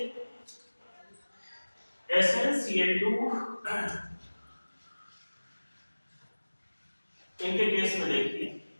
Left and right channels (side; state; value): both; inverted; correlation -1.00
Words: SnCl2 इनके केस में देखिए,